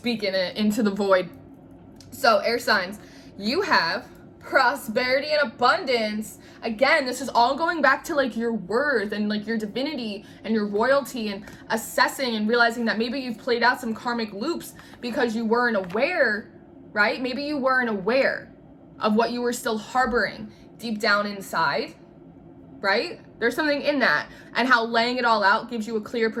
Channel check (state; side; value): identical; both; correlation 1.00